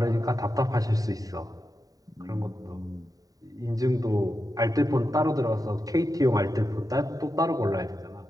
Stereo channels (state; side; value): late; left; 0.18 ms